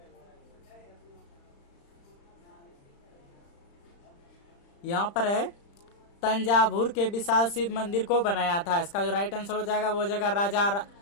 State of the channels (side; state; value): right; late; 35 ms